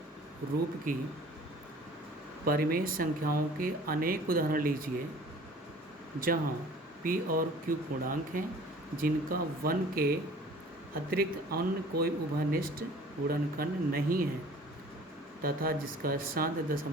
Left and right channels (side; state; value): both; normal; correlation 0.48